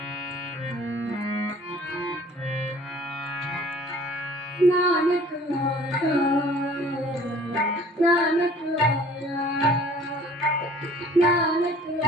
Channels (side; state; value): both; normal; correlation 0.51